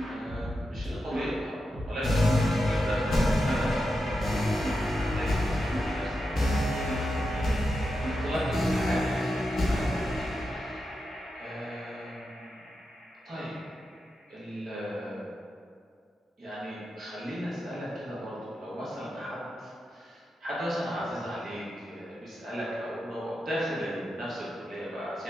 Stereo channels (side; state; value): both; normal; correlation 0.88